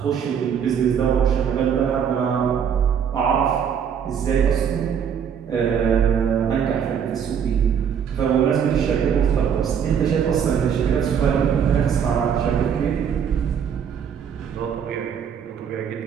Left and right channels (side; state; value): left; quieter; 7.8 dB